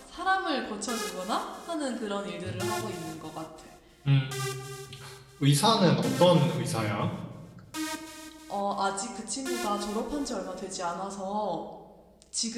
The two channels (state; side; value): identical; both; correlation 1.00